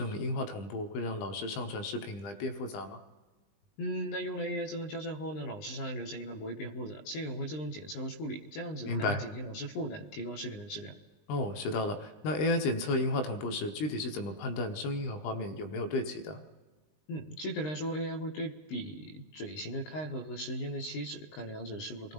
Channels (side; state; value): right; late; 20 ms